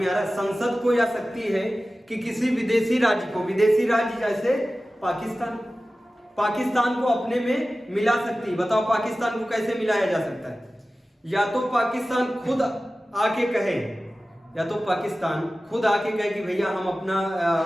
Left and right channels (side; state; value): both; normal; correlation 0.96